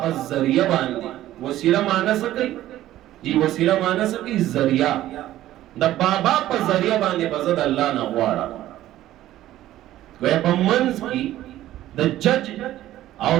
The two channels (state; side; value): quieter; left; 14.0 dB